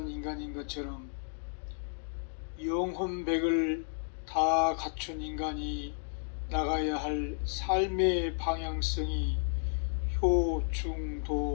인간인 것처럼 영혼백을 다 갖춘 인간이 나가야 할 삶의 방향성이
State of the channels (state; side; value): silent; right; digital silence